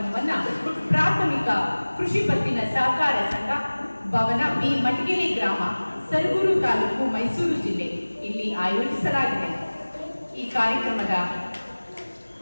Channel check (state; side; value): inverted; both; correlation -1.00